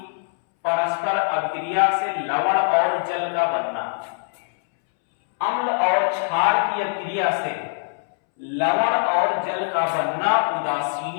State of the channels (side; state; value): right; silent; 64 dB below the other